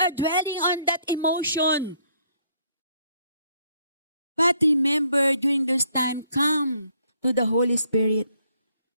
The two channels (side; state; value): both; inverted; correlation -0.68